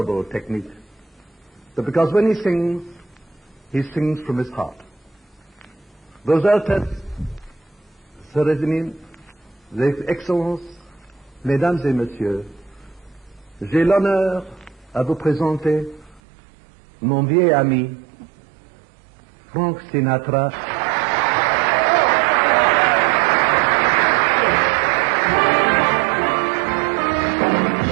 technique, but because when he sings from his heart. Vos Altesses, Sérénissime, Vos Excellences, Mesdames et Messieurs, j'ai l'honneur à vous présenter mon vieil ami, Frank Sinatra.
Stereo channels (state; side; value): drops out; left; at 16.2 s